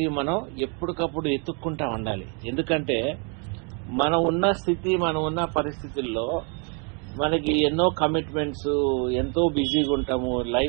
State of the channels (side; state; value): left; quieter; 35.7 dB